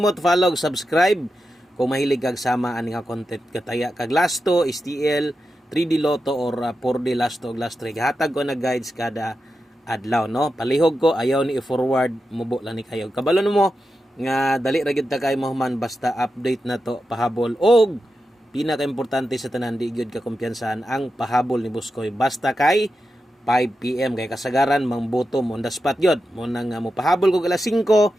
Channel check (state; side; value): normal; both; correlation 0.90